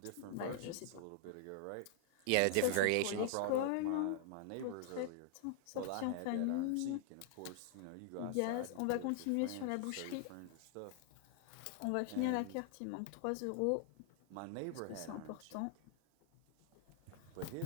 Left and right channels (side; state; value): both; different; correlation -0.01